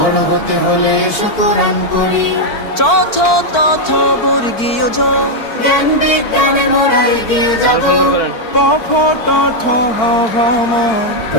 হতে হলে এসো কোরআন পড়ি। চথ তথ বর্গীয় জ, জ্ঞান বিজ্ঞানে মোরা এগিয়ে যাব। প ফ ট ঠ হ ভ ম,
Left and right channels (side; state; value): right; late; 4.5 ms